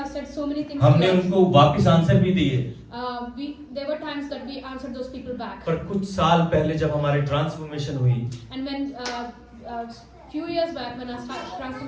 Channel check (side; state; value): both; identical; correlation 1.00